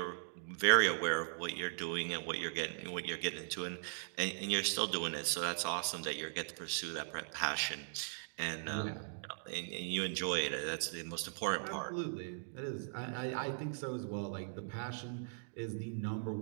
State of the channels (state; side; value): silent; left; digital silence